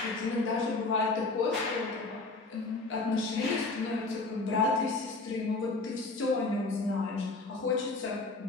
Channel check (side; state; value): right; quieter; 3.4 dB